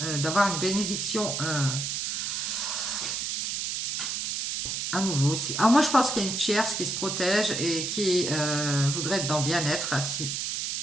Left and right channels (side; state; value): right; noise; hiss, 2 dB below the sound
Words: d'avoir une bénédiction à nouveau aussi. Alors moi je pense qu'il y a une tierce qui se protège et qui voudrait être dans le bien-être ici.